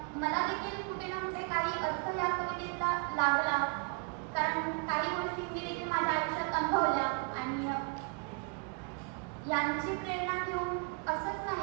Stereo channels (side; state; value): left; quieter; 34.7 dB